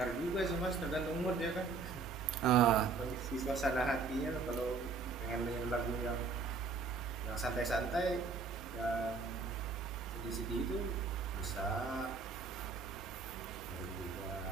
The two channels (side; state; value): left; quieter; 4.5 dB